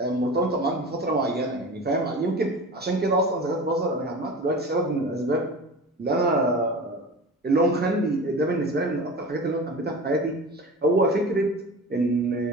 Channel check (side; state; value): both; normal; correlation 0.33